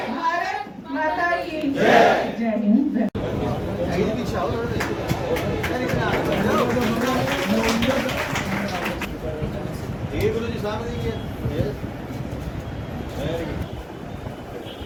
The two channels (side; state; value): both; identical; correlation 1.00